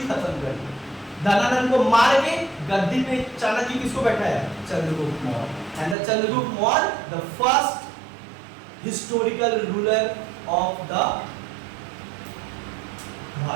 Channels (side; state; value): left; drops out; at 6.0 s